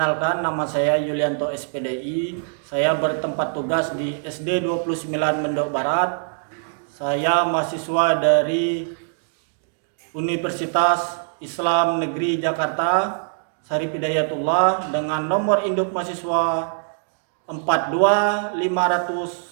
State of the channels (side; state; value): left; silent; digital silence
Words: nama saya Yulianto SPDI. Saya bertempat tugas di SD 29 Mendok Barat. Saya mahasiswa dari Universitas Islam Negeri Jakarta, Syarif Hidayatullah, dengan nomor induk mahasiswa